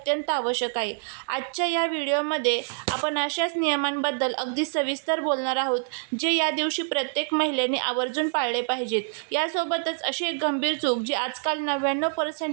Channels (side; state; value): left; silent; digital silence